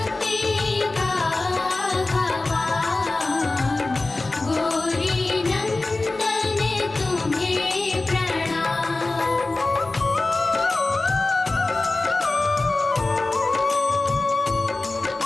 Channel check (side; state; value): right; quieter; 3.2 dB